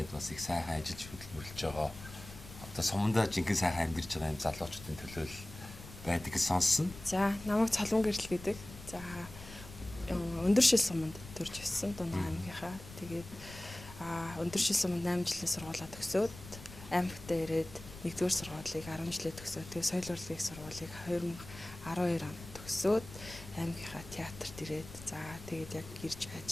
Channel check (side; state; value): left; noise; rumble, 15 dB below the sound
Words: бас их сайхан ажиллаж хөдөлмөрлөж байгаа. Одоо Сумдаа жинхэнэ сайхан амьдарч байгаа юм залуучуудын төлөө байдаг гэж сонссон. За, намайг Цолмон гэрэл гэдэг. За, өндөр шил суманд төрж өссөн Дундгой аймгийнхаа. Тэгээд өндөр шил суманд 8 жилийн сургуулаа төгсөөд аймагтаа ирээд 1-р сургуулийг 10 жилээ төгсөөд тэгээд соёл урлагийн сургуулийг 2012 онд төгсөөд аймгийнхаа театрт ирээд за тэгээд яг ирж